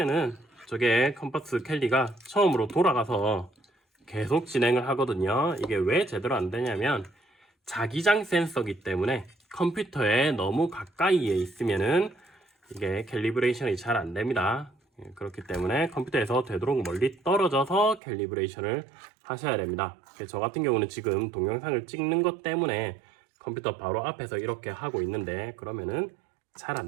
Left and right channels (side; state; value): left; drops out; at 18.0 s